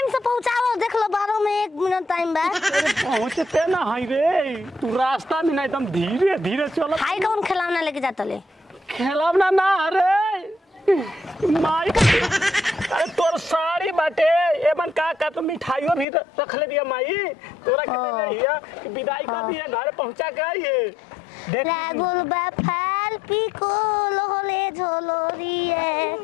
से पहुंचाओ देख लो 12 में 1 मिनट टाइम बा पहुंचते ना हाई रे तू रास्ता में ना एकदम धीरे धीरे चलो हाई कौन खिलौना लेके जाता ले खेलवना ना अरे माई अरे तोर साड़ी बाटे एमन का तो मिठाइयों भी रख ले दिया माई तोरा कहते रहिया कि विदाई कर दिया घर पहुंचा के ये देख रागुल बा फाल पिको लोले झोलोरिए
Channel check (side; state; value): right; drops out; at 16.1 s